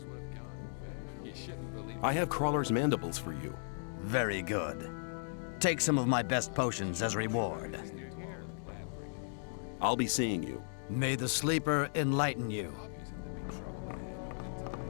I have Crawler's mandibles for you. Very good. Take some of my best potions as reward. I'll be seeing you. May the sleeper enlighten you.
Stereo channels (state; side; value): silent; right; digital silence